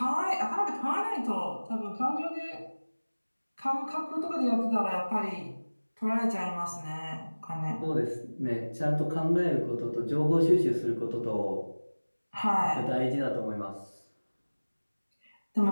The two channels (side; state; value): both; inverted; correlation -1.00